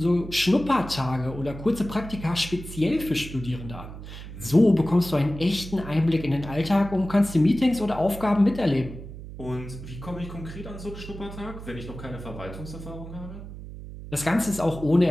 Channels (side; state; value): right; noise; hum, 12 dB below the sound